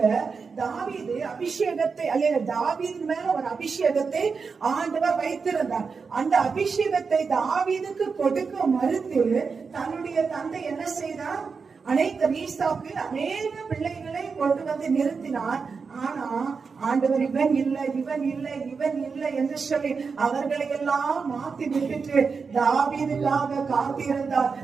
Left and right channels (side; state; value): left; quieter; 5.2 dB